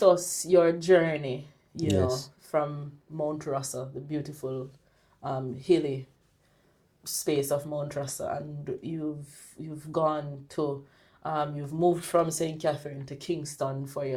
us your journey, Yes. from Mount Russell, the beautiful, hilly space of Mount Russell, and you've gone to, you've moved from St. Catherine to Kingston for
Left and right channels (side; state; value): both; identical; correlation 1.00